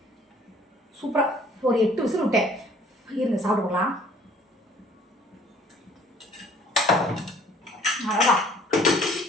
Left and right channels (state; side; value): normal; both; correlation 0.55